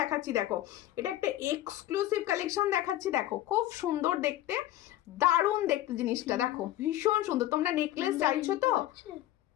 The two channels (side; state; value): right; quieter; 14.4 dB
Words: দেখো এটা একটা এক্সক্লুসিভ কালেকশন দেখাচ্ছি। দেখো খুব সুন্দর দেখতে, দারুণ দেখতে জিনিসটা। দেখো ভীষণ সুন্দর। তোমরা নেকলেস চাইছো তো?